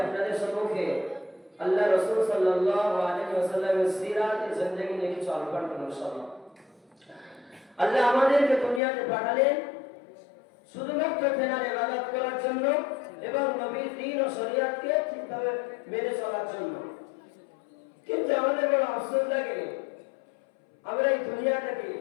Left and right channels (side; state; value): right; drops out; at 8.8 s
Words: আপনাদের সম্মুখে আল্লাহ রাসূল সাল্লাল্লাহু আলাইহি ওয়াসাল্লামের সিরাতে জিন্দেগি নিয়ে কিছু আলোচনা করব ইনশাআল্লাহ। আল্লাহ আমাদেরকে দুনিয়াতে পাঠালেন শুধুমাত্র তেনার ইবাদত করার জন্য এবং নবীর দ্বীন ও শরীয়তকে ঠিকভাবে মেনে চলার জন্য। কিন্তু আমাদের বড় আফসোস লাগে, আমরা এই দুনিয়াটাকে